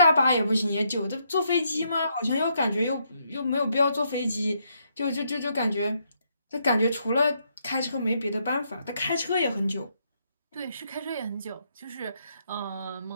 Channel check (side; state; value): both; inverted; correlation -0.75